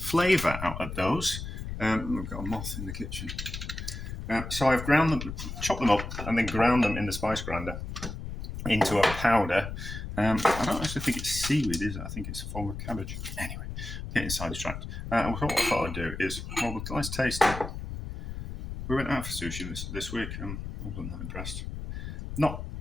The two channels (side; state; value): left; noise; rumble, 7 dB below the sound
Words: out of those. I've got a moth in the kitchen, so I've ground them, chopped them up, and then ground them in the spice grinder into a powder. I don't actually think it's seaweed, is it? I think it's a form of cabbage. Anyway, getting sidetracked. What I thought I'd do is, well, let's taste it. We went out for sushi this week, and I wasn't that impressed. Not